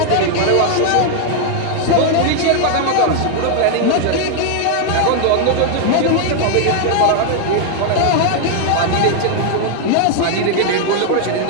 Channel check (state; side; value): different; both; correlation 0.00